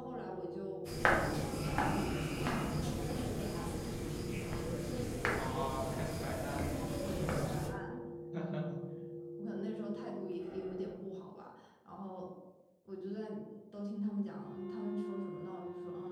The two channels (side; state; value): both; identical; correlation 1.00